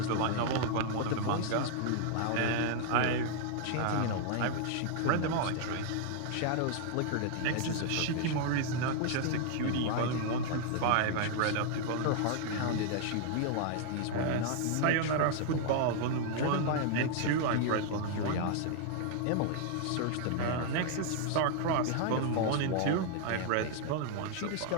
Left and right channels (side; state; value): both; different; correlation 0.00